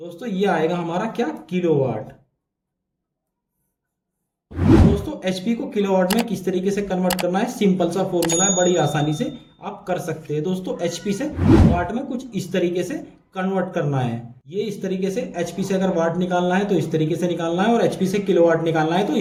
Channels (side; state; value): both; identical; correlation 1.00